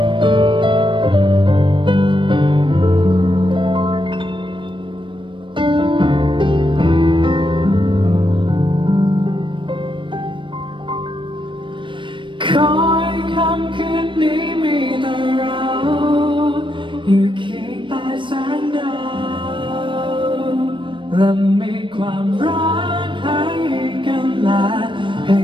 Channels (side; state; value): left; late; 0.24 ms